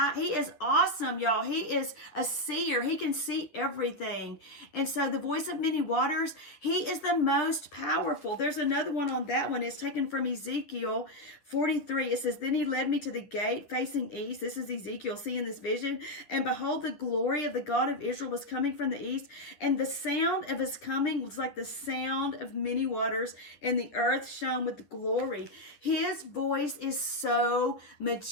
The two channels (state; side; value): late; right; 10 ms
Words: he is awesome, y'all. He is a seer. He can see everything. And so the voice of many waters, he is the most powerful. There's another one on that one. It's taken from Ezekiel 43. It says, then he led me to the gate facing east. This is Ezekiel seeing this vision. And behold, the glory of the God of Israel was coming from the east. And the sound of his coming was like the sound of many waters. And the earth shone with glory. His voice is so